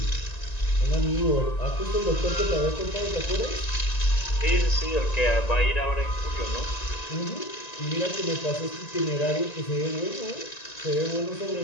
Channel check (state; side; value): late; right; 1.9 ms